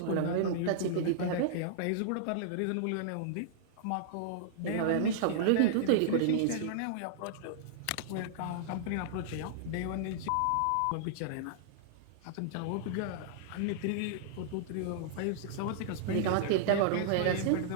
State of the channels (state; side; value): different; both; correlation -0.01